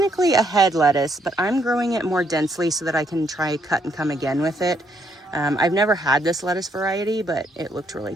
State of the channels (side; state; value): both; normal; correlation 0.72